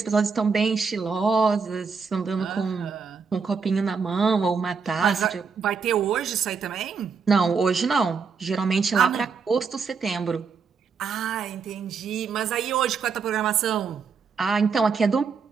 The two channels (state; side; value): quieter; left; 5.4 dB